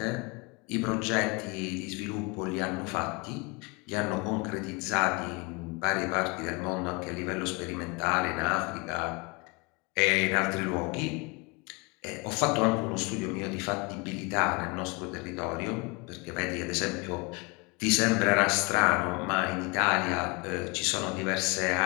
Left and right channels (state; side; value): quieter; right; 28.8 dB